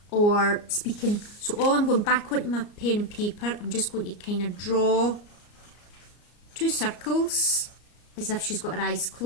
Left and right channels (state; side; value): late; right; 34 ms